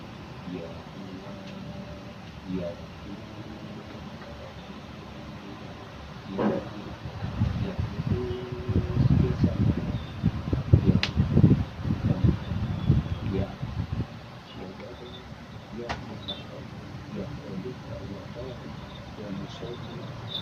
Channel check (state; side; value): identical; both; correlation 1.00